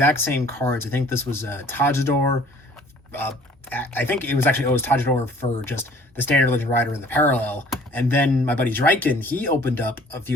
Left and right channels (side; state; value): both; normal; correlation 0.54